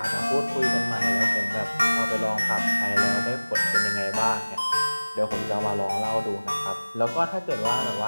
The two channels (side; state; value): both; inverted; correlation -1.00